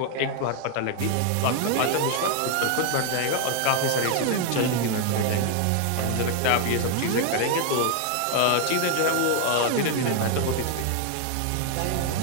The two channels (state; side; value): different; both; correlation 0.00